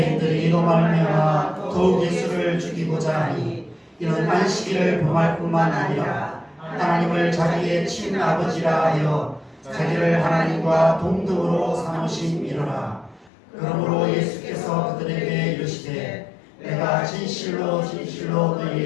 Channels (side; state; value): right; drops out; at 13.3 s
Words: 이로 말미암아 더욱 예수를 죽이고자 하니 이는 안식일을 범할 뿐만 아니라 하나님을 자기의 친아버지라 하여 자기를 하나님과 동등으로 삼으심이로라. 그러므로 예수께서 그들에게 이르시되 내가 진실로 진실로